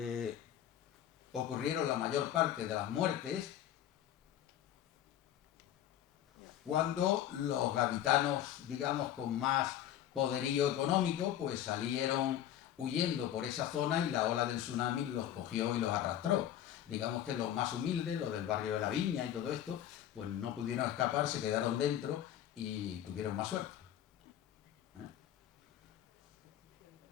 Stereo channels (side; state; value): right; quieter; 11.2 dB